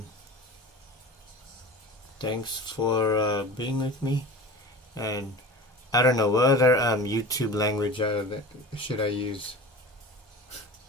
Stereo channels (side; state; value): both; normal; correlation 0.34